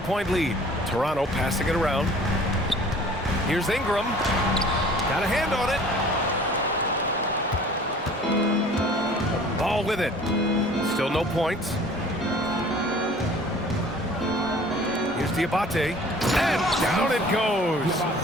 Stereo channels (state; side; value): normal; both; correlation 0.49